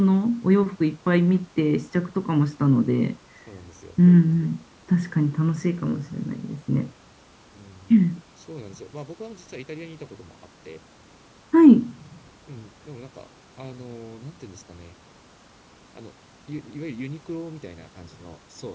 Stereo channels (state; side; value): identical; both; correlation 1.00